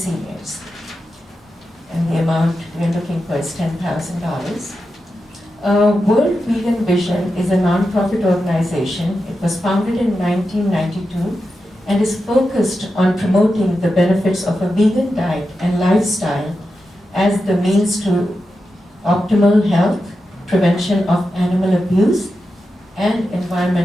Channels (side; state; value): both; normal; correlation 0.89